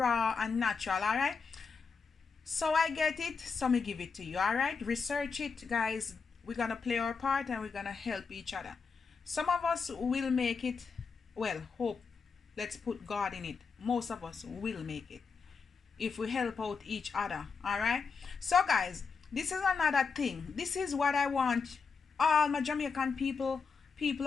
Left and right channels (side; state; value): right; quieter; 5.3 dB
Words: and natural, alright? So I get it, so me give it to you, alright? Research it, guys. We're gonna play our part and we're gonna help each other. Some of us will make it, well, hope. Let's put God in it. Most of us will make it if we help out each other, alright? So guys, this is another thing. This is what I want all my Jamaican people